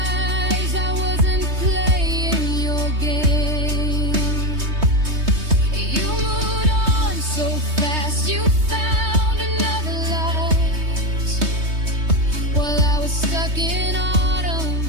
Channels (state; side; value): late; left; 3.2 ms